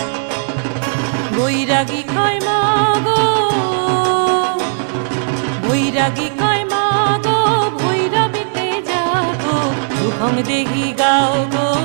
বৈরাগী কয় মাগো, বৈরাগী কয় মাগো, ভৈরবীতে যাগো, রূপং দেহি গাও গো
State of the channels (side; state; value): left; silent; digital silence